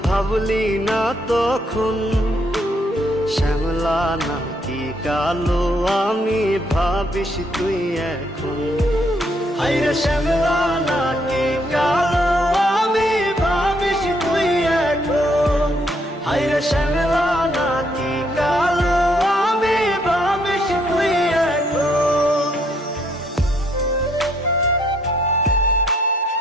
ভাবলি না তখন, শ্যামলা নাকি কালো আমি ভাবিস তুই এখন। হায়রে শ্যামলা নাকি কালো আমি ভাবিস তুই এখন। হায়রে শ্যামলা নাকি কালো আমি ভাবিস তুই এখন।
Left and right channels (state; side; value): normal; both; correlation 0.71